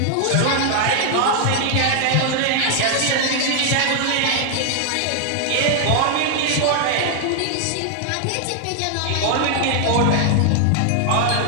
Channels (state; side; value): different; both; correlation 0.00